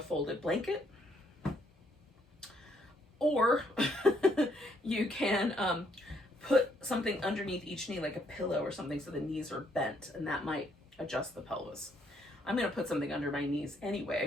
blanket, or you can put something underneath each knee, like a pillow or something, so the knees are bent, and that might adjust the pelvis. I'm going to put something under my knees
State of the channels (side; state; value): both; normal; correlation 0.70